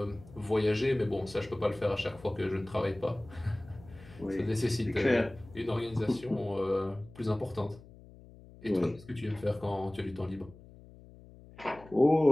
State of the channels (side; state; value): left; noise; hum, 20 dB below the sound